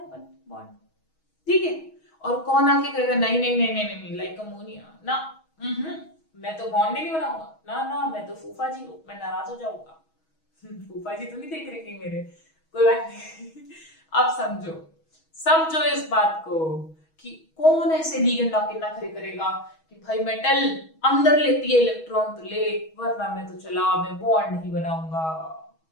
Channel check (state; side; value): late; right; 6.2 ms